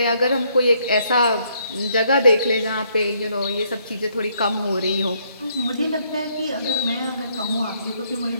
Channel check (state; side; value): inverted; both; correlation -0.70